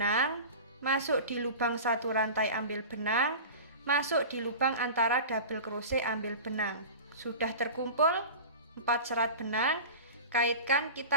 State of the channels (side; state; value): both; inverted; correlation -0.33